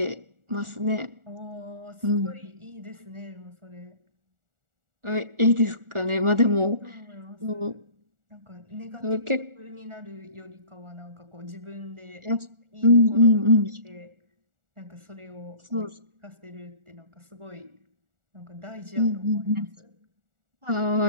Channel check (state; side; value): late; left; 1.4 ms